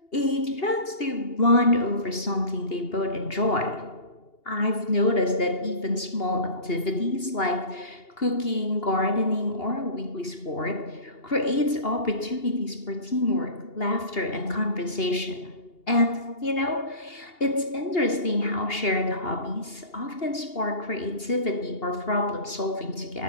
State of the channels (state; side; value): late; right; 2.8 ms